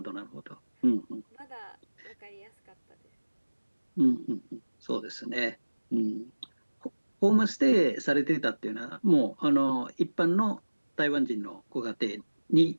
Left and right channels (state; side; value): inverted; both; correlation -1.00